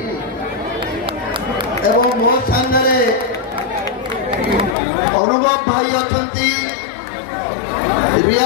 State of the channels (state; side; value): drops out; right; at 4.8 s